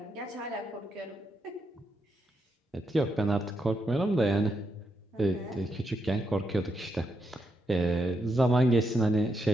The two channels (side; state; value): both; normal; correlation 0.81